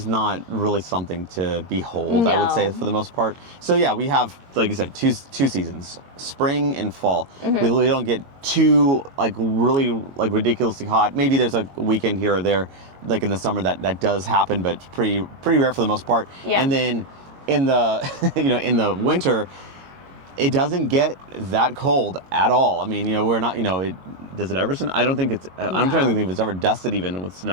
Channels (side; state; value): left; late; 22 ms